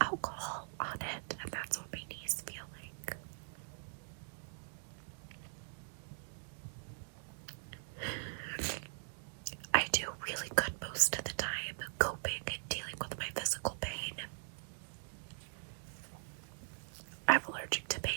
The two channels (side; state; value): left; silent; digital silence